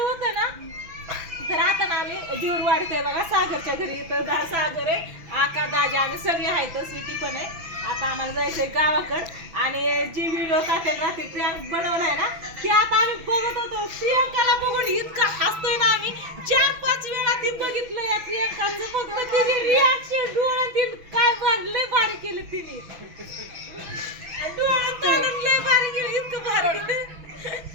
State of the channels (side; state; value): left; late; 6.0 ms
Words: होतं ना तर आता ना आम्ही जीवर वाढतोय बघा सागरच्या घरी इथं सागर आहे आका दाजा आम्ही सगळे आहेत स्वीटी पण आहे आता आम्हाला जायचंय गावाकडं आणि जी व्हिडिओ टाकेल रात्री प्रियांक बनवलाय ना ती आता आम्ही बघत होतो प्रियांकाला बघून इतका हसतोय ना आम्ही 4-5 वेळा ती बघितलं या प्रियांकाचं फक्त तिचे रिॲक्शन डोळ्यातील काय लय भारी केलं तिने डोळ्यात तोडून लय भारी केलं इतकं भारी